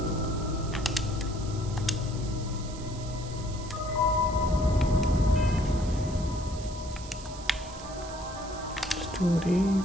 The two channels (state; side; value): noise; right; hiss, 16 dB below the sound